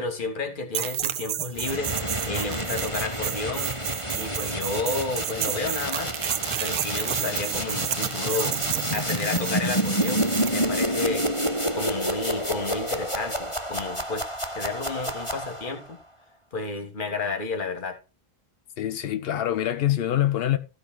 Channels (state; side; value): late; right; 1.4 ms